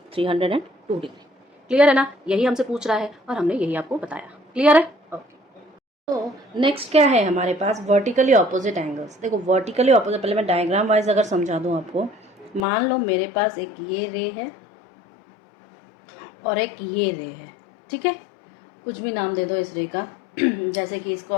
302 degree. Clear है ना। यही हमसे पूछ रहा है और हमने यही आपको बताया। क्लियर है। ओके। तो नेक्स्ट क्या है हमारे पास? Vertically opposite angles. देखो वर्टिकली ऑपोजिट, पहले मैं डायग्राम वाइज अगर समझा दूं आपको। मान लो मेरे पास एक ये रे है और एक ये रे है, ठीक है। कुछ भी नाम दे दो इस रे का जैसे कि इसको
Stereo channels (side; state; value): right; drops out; at 12.7 s